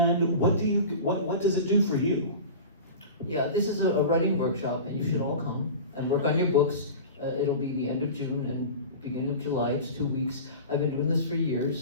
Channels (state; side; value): inverted; both; correlation -0.33